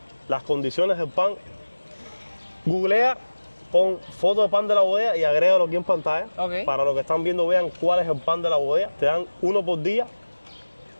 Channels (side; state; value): both; inverted; correlation -1.00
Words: las condiciones del pan. Googlea, pon foto de pan de la bodega y agrégalo aquí en pantalla. Para los que están viendo vean cuál es el pan de la bodega. Te dan uno por día